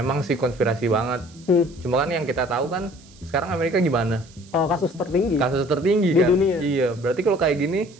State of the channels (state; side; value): noise; right; hiss, 25 dB below the sound